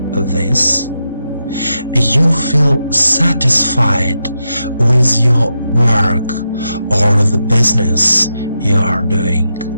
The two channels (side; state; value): both; inverted; correlation -0.86